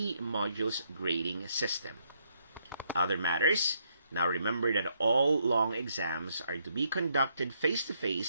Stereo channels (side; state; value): both; inverted; correlation -0.74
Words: modules grading system. Other matters, now remember that all long exams are to be conducted